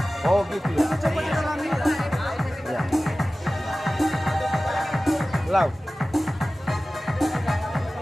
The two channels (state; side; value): normal; both; correlation 0.96